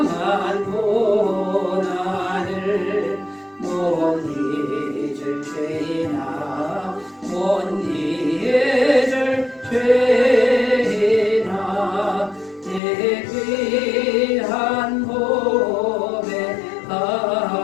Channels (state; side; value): drops out; right; at 12.8 s